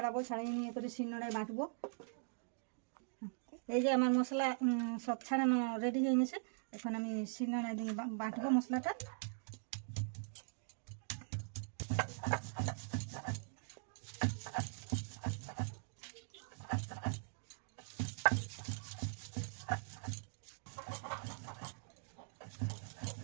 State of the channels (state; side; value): silent; left; digital silence